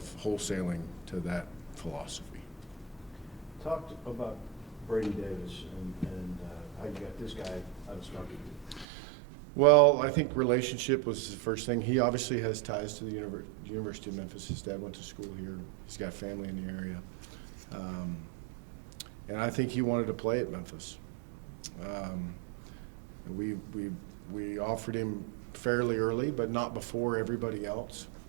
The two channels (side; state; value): left; drops out; at 8.8 s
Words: wholesaling to that philosophy. Talked about Brady Davis and how you got this guy out of Starkey. Well, I think relationship was the first thing. He obviously has ties to the University of Memphis. His dad went to school here. He's got family in the area. And I think he wanted to play at Memphis. We offered him fairly early, but not before everybody else.